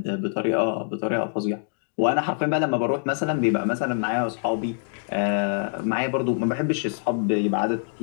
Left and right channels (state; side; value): silent; right; digital silence